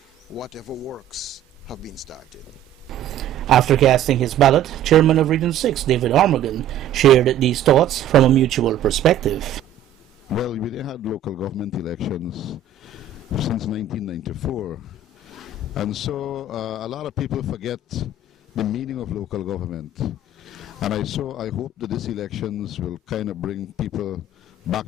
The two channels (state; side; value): quieter; left; 6.6 dB